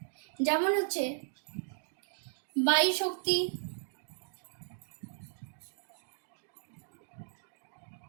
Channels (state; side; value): silent; left; digital silence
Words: যেমন হচ্ছে বায়ু শক্তি,